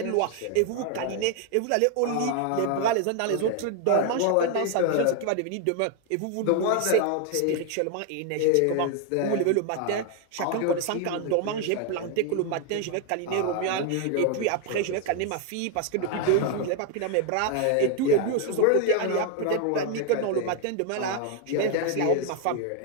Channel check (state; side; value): different; both; correlation 0.00